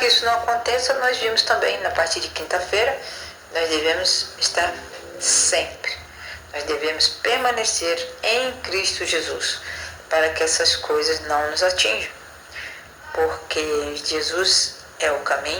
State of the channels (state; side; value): identical; both; correlation 1.00